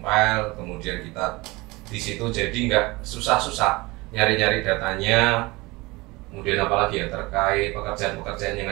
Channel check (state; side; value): quieter; left; 22.9 dB